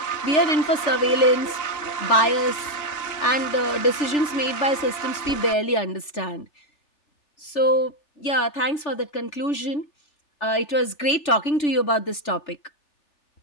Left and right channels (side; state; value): right; late; 3.4 ms